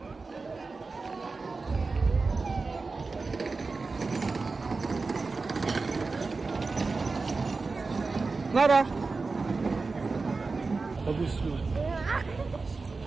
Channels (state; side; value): quieter; left; 4.0 dB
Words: Nara, bagus tuh.